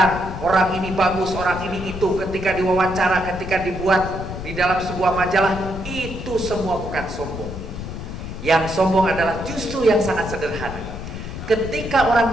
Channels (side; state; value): left; noise; rumble, 8 dB below the sound